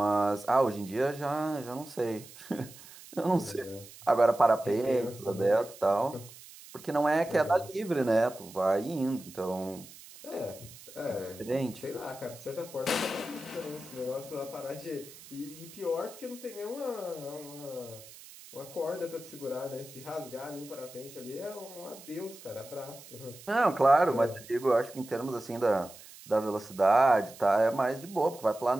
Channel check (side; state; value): right; noise; hiss, 18 dB below the sound